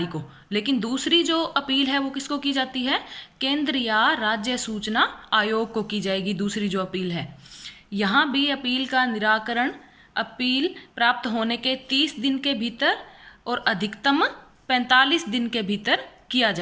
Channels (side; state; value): both; identical; correlation 1.00